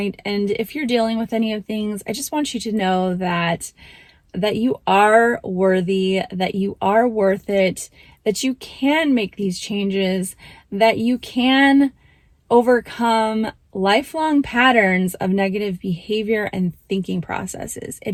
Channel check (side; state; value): both; identical; correlation 1.00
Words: if you're dealing with any of things, I just want you to know that you are worthy, that you are worth it, that you can make these changes, that you can overcome lifelong patterns of negative behavior and thinking processes.